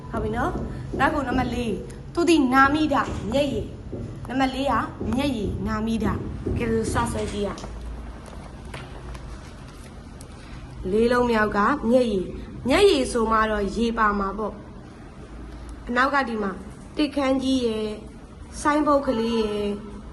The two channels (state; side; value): identical; both; correlation 1.00